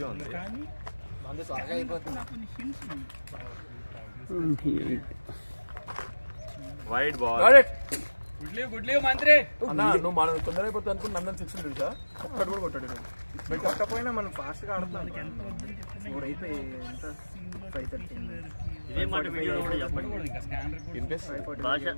ఉంది. Wide ball. గుడ్లీ మంత్రి. అన్నా నువ్వు మనం తొందర అయిపోతుంది అనుకుని నందన్ 6 తెలుసా? ఒక్కడు కూడా కొట్టాడు. మీరు కొట్టకపోయినా మనం ఫాస్ట్గా ఆడుతున్నాం. 4 అయిపోయి ఎంత 5:30. ఇదే మాట వీడియో కూడా చెప్పండి.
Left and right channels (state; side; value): inverted; both; correlation -1.00